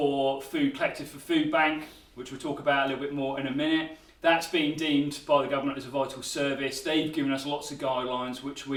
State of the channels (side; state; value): both; identical; correlation 1.00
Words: food collected for Food Bank, which we'll talk about a little bit more in a minute. That's been deemed by the government as a vital service. They've given us lots of guidelines which